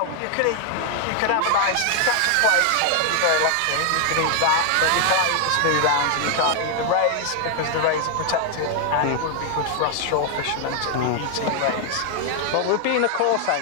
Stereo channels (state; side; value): different; both; correlation 0.00